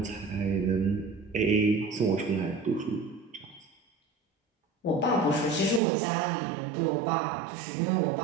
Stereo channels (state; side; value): drops out; left; at 5.8 s